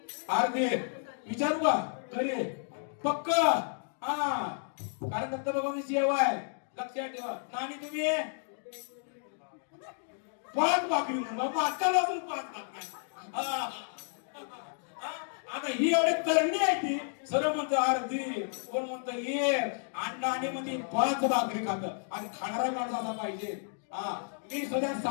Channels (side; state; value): right; silent; digital silence